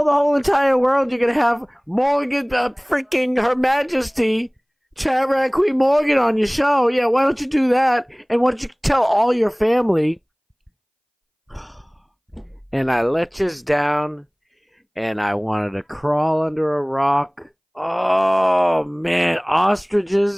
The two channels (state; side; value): identical; both; correlation 1.00